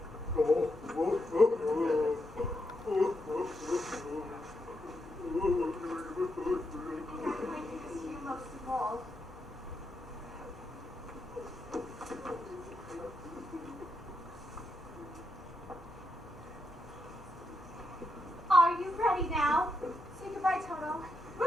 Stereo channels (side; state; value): both; normal; correlation 0.82